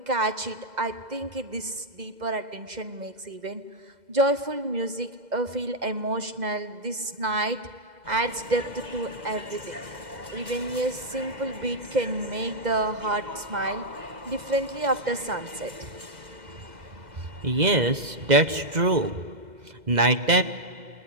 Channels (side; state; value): left; late; 2.0 ms